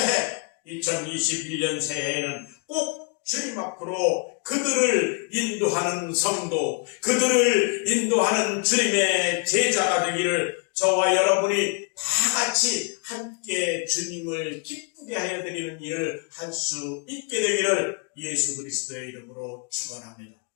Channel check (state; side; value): quieter; right; 36.6 dB